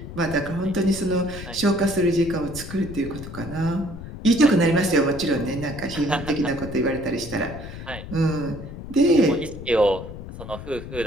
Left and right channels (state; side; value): noise; left; rumble, 11 dB below the sound